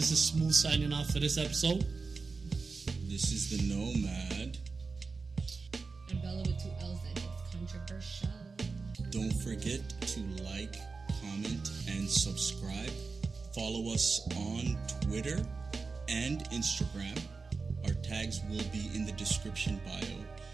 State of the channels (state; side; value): quieter; left; 4.4 dB